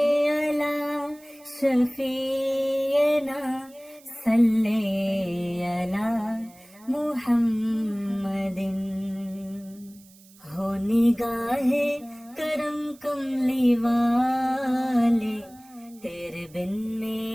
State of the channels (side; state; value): right; noise; hiss, 26 dB below the sound